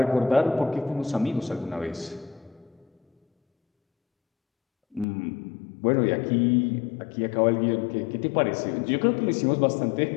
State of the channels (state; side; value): drops out; right; at 5.1 s